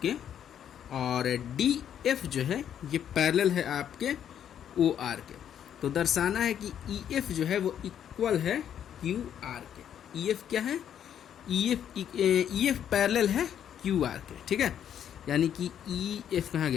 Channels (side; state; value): right; quieter; 9.5 dB